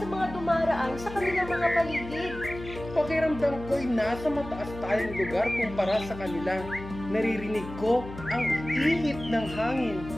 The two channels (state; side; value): noise; left; hum, 12 dB below the sound